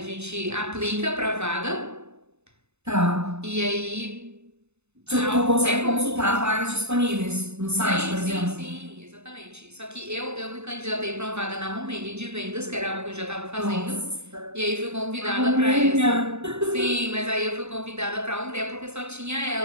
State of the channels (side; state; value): left; late; 0.81 ms